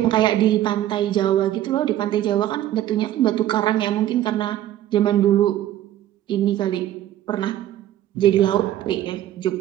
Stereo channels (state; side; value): quieter; left; 12.8 dB